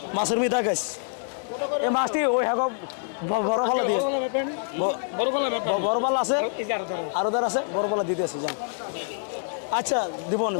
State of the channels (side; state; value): right; silent; digital silence